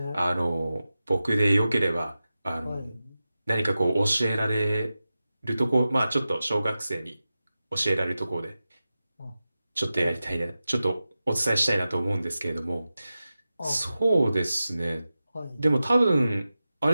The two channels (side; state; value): both; inverted; correlation -0.94